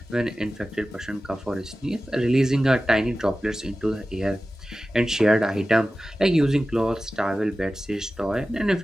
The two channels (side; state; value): both; normal; correlation 0.95